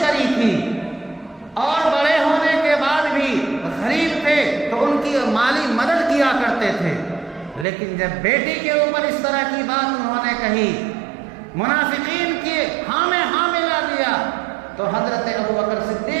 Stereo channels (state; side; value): drops out; left; at 7.7 s